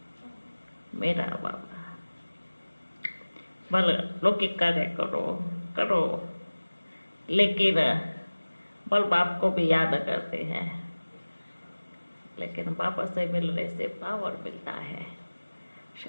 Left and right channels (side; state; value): both; inverted; correlation -1.00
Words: मेरा बाबा। भले लौकिक कार्य करो करो, लेकिन बल बाप को भी याद करते हैं, लेकिन बाबा से मिलने से पावर मिलता है,